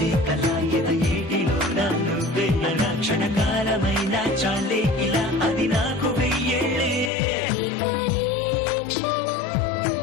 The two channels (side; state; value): right; drops out; at 7.1 s